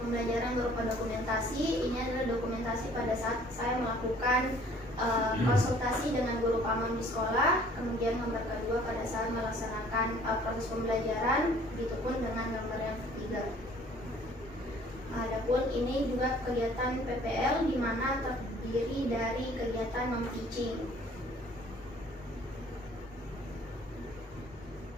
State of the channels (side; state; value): both; normal; correlation 0.55